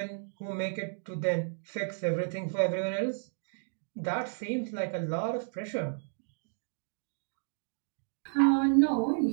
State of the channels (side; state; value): left; silent; digital silence